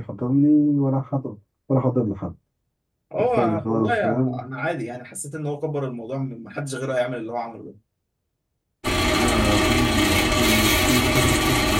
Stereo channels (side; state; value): both; identical; correlation 1.00